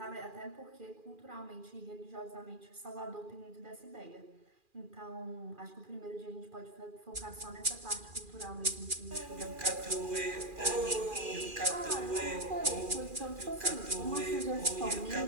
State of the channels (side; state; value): left; late; 2.4 ms